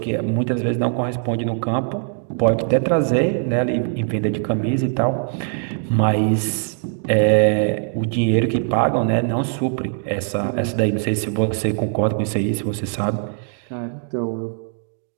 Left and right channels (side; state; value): left; silent; 56 dB below the other